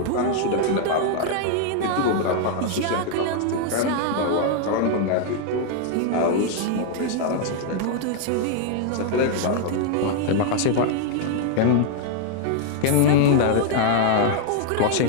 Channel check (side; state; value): both; different; correlation 0.00